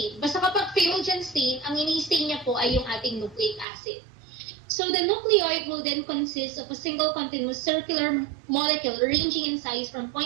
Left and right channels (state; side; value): drops out; left; at 3.7 s